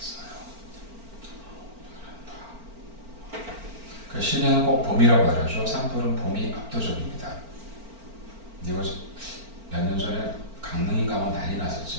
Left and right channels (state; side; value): late; left; 4.4 ms